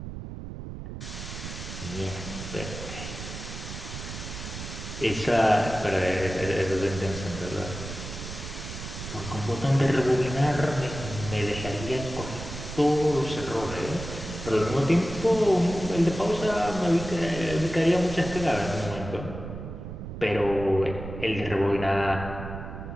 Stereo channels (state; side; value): noise; right; rumble, 9 dB below the sound